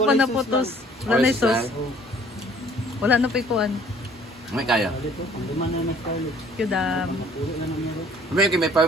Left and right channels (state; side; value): normal; both; correlation 0.56